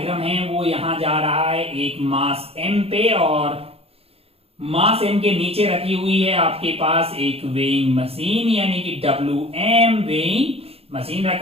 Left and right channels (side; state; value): left; late; 0.29 ms